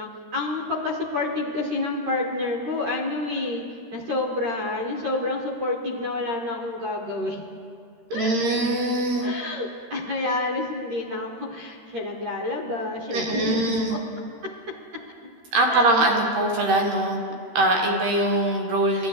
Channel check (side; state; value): left; late; 13 ms